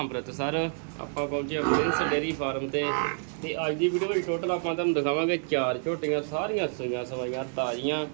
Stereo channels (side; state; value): left; silent; 59 dB below the other